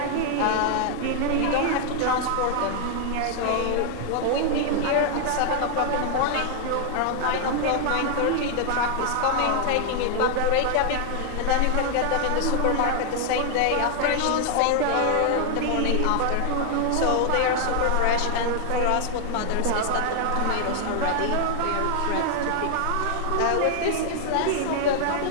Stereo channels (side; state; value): both; different; correlation 0.00